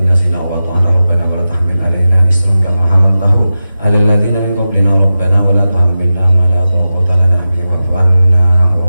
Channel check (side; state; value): both; inverted; correlation -0.93